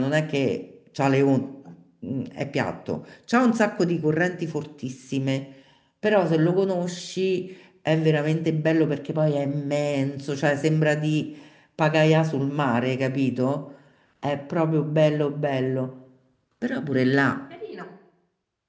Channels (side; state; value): both; identical; correlation 1.00